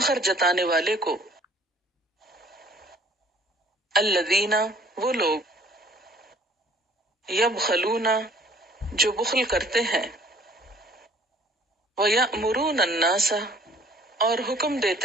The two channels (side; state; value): both; normal; correlation 0.56